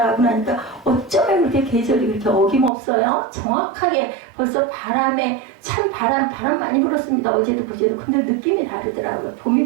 나니까 어쩌면 그렇게 계절이 그렇게 어김없어요. 정확하게 벌써 바람에 참 바람 많이 불었습니다. 어제도 그제도. 근데 느낌이 다르더라고요. 봄이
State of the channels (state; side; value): drops out; left; at 2.7 s